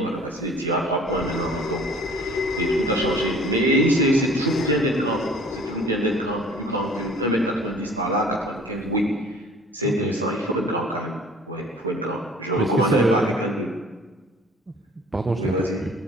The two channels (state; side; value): normal; both; correlation 0.50